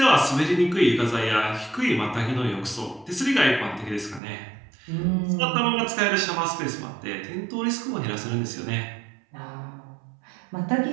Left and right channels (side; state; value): left; drops out; at 4.2 s